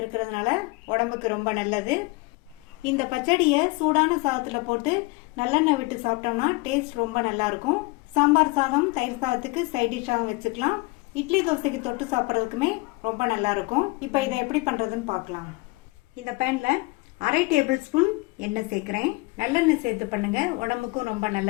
உடம்புக்கு ரொம்ப நல்லது. இந்த பச்சடியை சூடான சாதத்துல போட்டு நல்லெண்ணெய் விட்டு சாப்பிட்டோம்னா டேஸ்ட் ரொம்ப நல்லா இருக்கும். சாம்பார் சாதம், தயிர் சாதத்துக்கு சைட் டிஷ்ஷாகவும் வச்சுக்கலாம். இட்லி தோசைக்கு தொட்டு சாப்பிட்றதுக்குமே ரொம்ப நல்லா இருக்கும். இப்போ இதை எப்படி பண்றதுன்னு பார்க்கலாம். இந்த பேன்ல அரை டேபிள் ஸ்பூன் எண்ணெய் சேர்க்குறேன். நல்லெண்ணெய் சேர்த்து பண்ணுங்க, உடம்புக்கும் ரொம்ப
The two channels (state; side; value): quieter; right; 25.2 dB